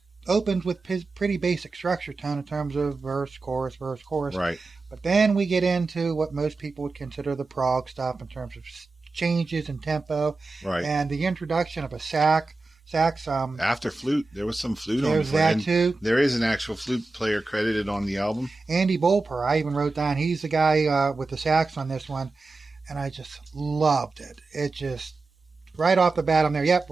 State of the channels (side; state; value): left; quieter; 3.6 dB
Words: Opens with pretty basic structure tone in terms of verse, chorus. Right. But then we get into what most people would consider the prog stuff in terms of changes in tempo. Right. And the introduction of a sax. After flute, there was some flute on There's the that and too. There is an actual flute player credited on the album. Andy Bolper, I even wrote down, he's the guy with the sax on this one. And I just loved it. It just, right off the bat, I'm there. Yep,